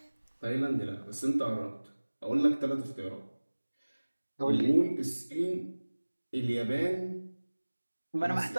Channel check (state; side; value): inverted; both; correlation -1.00